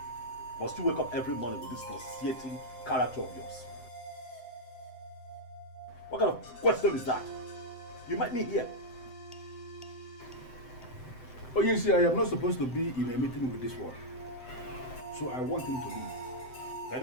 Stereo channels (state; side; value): late; right; 7.8 ms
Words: Must you wake up every morning with this nauseating character of yours? What kind of question is that? You met me here. Oh, you see, I am not supposed to be in a meeting with this one. So I want him to leave. If